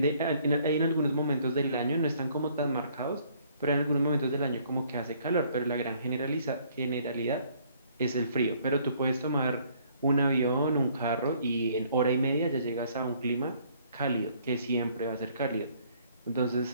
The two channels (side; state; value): both; inverted; correlation -0.62